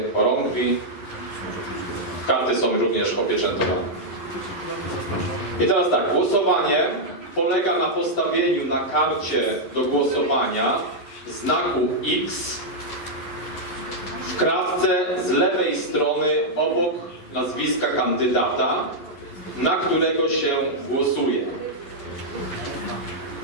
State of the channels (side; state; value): right; late; 11 ms